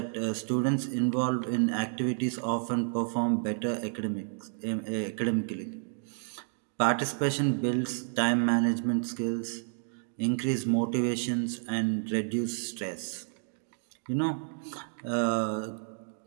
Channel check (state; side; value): silent; left; digital silence